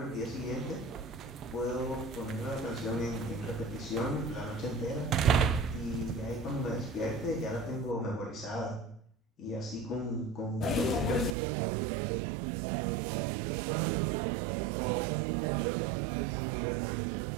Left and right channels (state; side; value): drops out; left; at 11.4 s